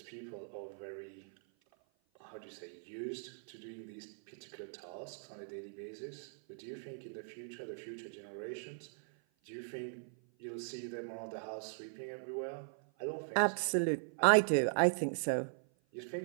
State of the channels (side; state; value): left; silent; 52 dB below the other